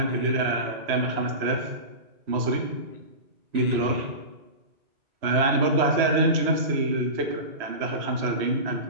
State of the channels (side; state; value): left; late; 3.0 ms